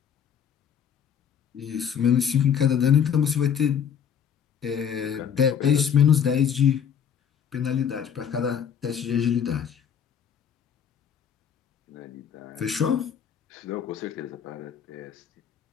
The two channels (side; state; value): right; quieter; 8.1 dB